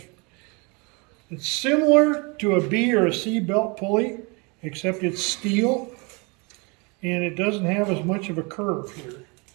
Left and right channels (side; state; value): left; quieter; 30.2 dB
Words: it's similar to a B or a C belt pulley, except it's steel and it doesn't have as much of a curve here.